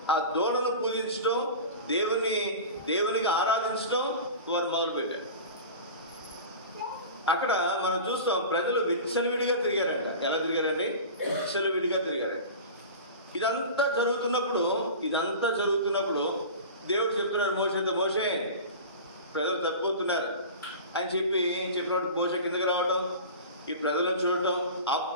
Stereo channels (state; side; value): inverted; both; correlation -0.33